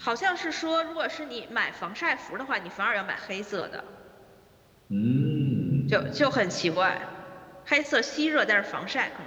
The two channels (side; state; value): both; identical; correlation 1.00